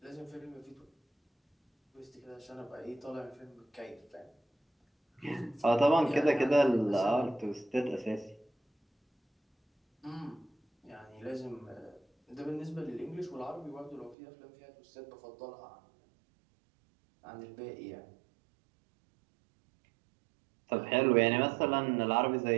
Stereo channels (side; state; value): left; drops out; at 14.2 s